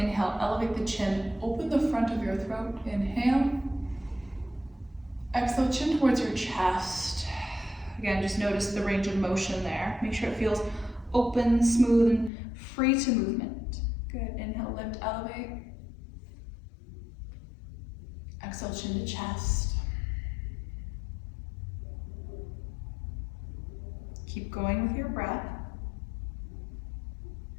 elevate the chin, open the front of your throat, inhale. Exhale, chin towards your chest. Again, just notice the range of motion there. Make sure it feels open, smooth, and free to movement. Good, inhale, lift, elevate. Exhale, chin to chest. Keep going with your breath.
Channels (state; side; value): drops out; right; at 12.3 s